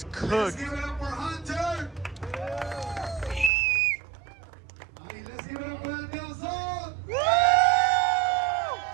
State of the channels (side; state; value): left; drops out; at 3.5 s